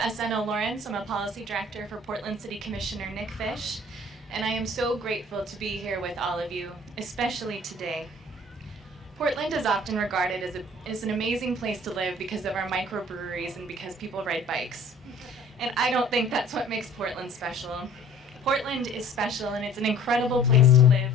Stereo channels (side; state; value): both; normal; correlation 0.51